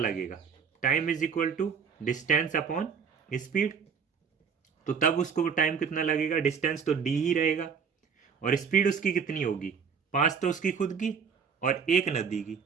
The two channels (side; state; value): left; quieter; 6.5 dB